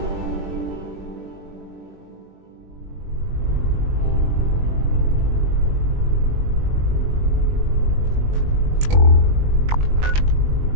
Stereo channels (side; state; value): left; late; 20 ms